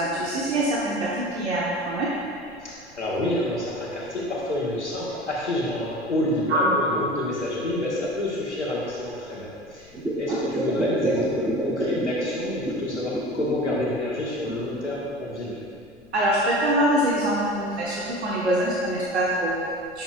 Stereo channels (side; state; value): left; noise; rumble, 27 dB below the sound